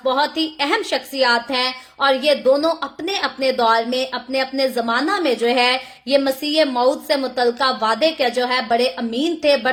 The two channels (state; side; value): identical; both; correlation 1.00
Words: बहुत ही अहम शख्सियात हैं और ये दोनों अपने अपने दौर में, अपने अपने जमाना में जो है ये मसीह मौत से मुतल्लिका वादे के जो है बड़े अमीन थे,